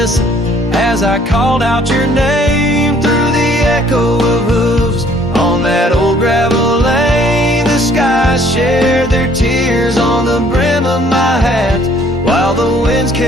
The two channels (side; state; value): both; normal; correlation 0.60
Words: as I called out your name through the echo of hooves on that old gravel lane. The skies shared their tears on the brim of my hat, while the winds